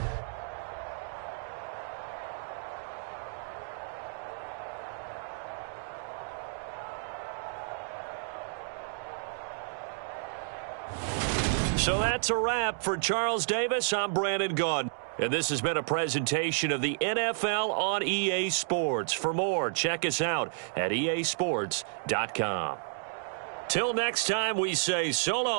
So that's a wrap for Charles Davis. I'm Brandon Gaudin. And this has been a presentation of the NFL on EA Sports. For more, check us out at easports.com. Till next time, we say so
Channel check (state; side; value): silent; left; digital silence